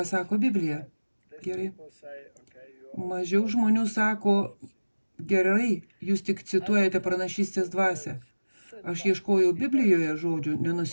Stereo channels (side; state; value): both; inverted; correlation -1.00